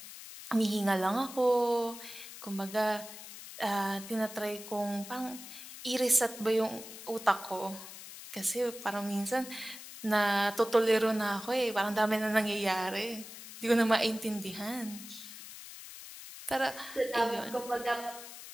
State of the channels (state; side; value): noise; left; hiss, 13 dB below the sound